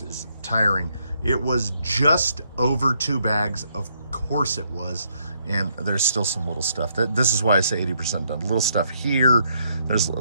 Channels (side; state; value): both; inverted; correlation -0.73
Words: is tiring. It was just over 2 bags, of course it was, and there's still some little stuff. This is why I say 80% done. Little stuff here, there's a